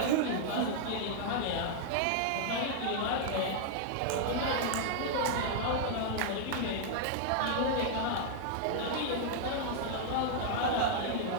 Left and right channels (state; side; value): different; both; correlation -0.01